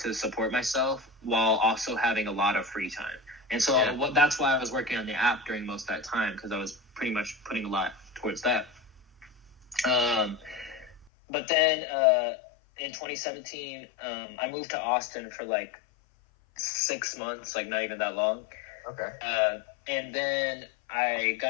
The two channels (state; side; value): drops out; right; at 11.1 s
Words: support myself while also having a lot of free time. And so that's why I was working on the app during most of that time, because I was pretty much putting a lot towards that. But then in 2017, I moved to Austin for like 6 months, like not even that long. Okay. And then I